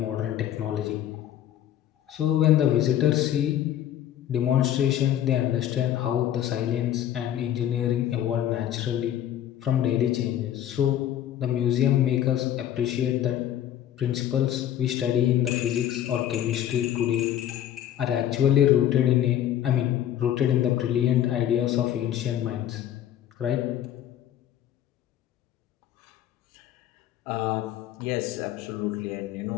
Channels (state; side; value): quieter; right; 11.2 dB